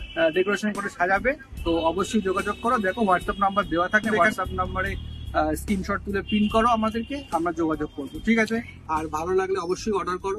ডেকোরেশন করে সাজাবে, তো অবশ্যই যোগাযোগ করো। দেখো হোয়াটসঅ্যাপ নাম্বার দেওয়া থাকে, হোয়াটসঅ্যাপ নাম্বারে স্ক্রিনশট তুলে প্রিন্ট করো আমাদেরকে, আমরা যোগাযোগ করবো। ঠিক আছে, আর ভালো লাগলে অবশ্যই অর্ডার করো।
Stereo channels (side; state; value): both; identical; correlation 1.00